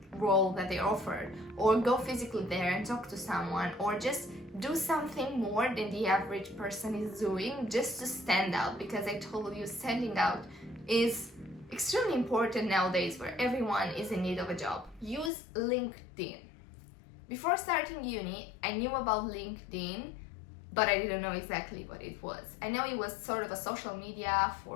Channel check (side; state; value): right; drops out; at 15.3 s